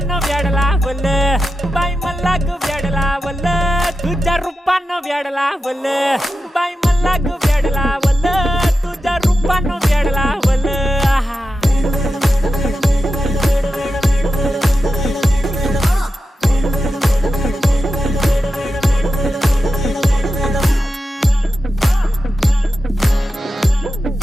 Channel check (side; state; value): both; normal; correlation 0.91